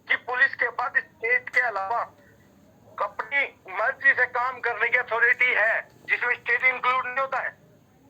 कि पुलिस के पास स्टेट के अलावा अपनी मर्जी से काम करने की अथॉरिटी है, जिसमें स्टेट इंक्लूड नहीं होता है,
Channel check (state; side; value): identical; both; correlation 1.00